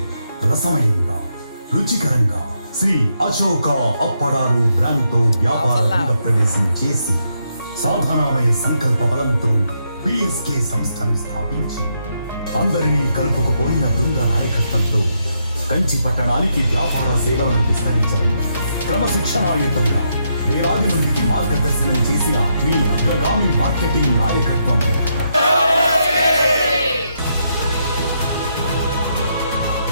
రసమయంగా రుచికరంగా శ్రీ అశోక అప్పడాలు బ్రాండ్తో వ్యాపార రంగ ప్రవేశం చేసి సాధనామయ సంకల్ప బలంతో పిఎస్కే సంస్థను స్థాపించి అందరినీ కలుపుకుపోయిన బృంద నాయకత్వంతో కంచి పట్టణానికి వ్యాపార సేవలను విస్తరించడం క్రమశిక్షణాయుతంగా వేలాది మందికి మార్గదర్శనం చేసిన మీ అగ్రగామి మార్కెటింగ్ నాయకత్వం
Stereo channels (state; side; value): inverted; both; correlation -0.79